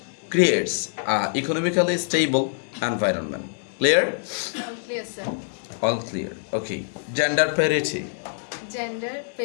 creates economically stable environment. Clear? All clear, sir. All clear. Okay, gender parity. Gender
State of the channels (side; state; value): right; silent; digital silence